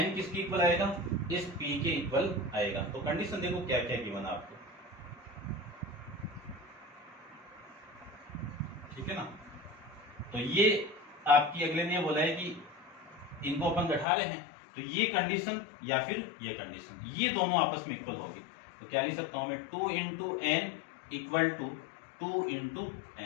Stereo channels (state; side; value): drops out; right; at 14.1 s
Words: किसके इक्वल आएगा, इस p के इक्वल आएगा। तो कंडीशन देखो क्या क्या गिवन आपको, ठीक है ना। तो ये आपकी अगले ने बोला है कि इनको अपन घटा रहे हैं, तो ये कंडीशन या फिर ये कंडीशन, ये दोनों आपस में इक्वल होगी। तो क्या लिख सकता हूं मैं, 2 into n equal to 2 into